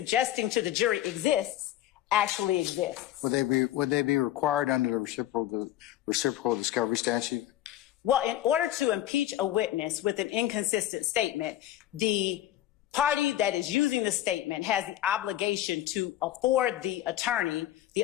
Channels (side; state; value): right; quieter; 13.3 dB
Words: to the jury exists actually exists. Would they be required under the reciprocal discovery statute? Well, in order to impeach a witness with an inconsistent statement, the party that is using the statement has the obligation to afford the attorney,